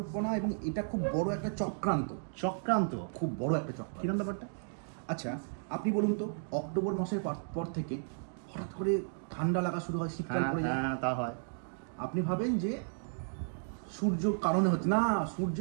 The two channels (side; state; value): left; silent; digital silence